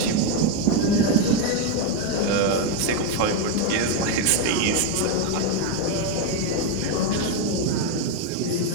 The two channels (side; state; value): both; different; correlation 0.02